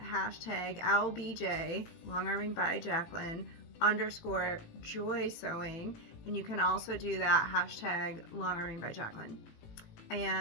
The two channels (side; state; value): right; late; 18 ms